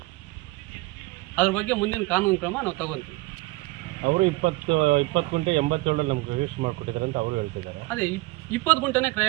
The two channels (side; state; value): left; quieter; 21.1 dB